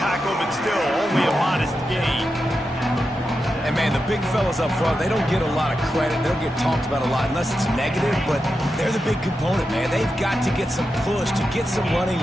tackle, but still only a modest gain. And, man, the big fellas up front, they don't get a lot of credit. They don't get talked about a lot unless it's negative, but they're the big component, man. They've got to get some push, to get some running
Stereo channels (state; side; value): normal; both; correlation 0.89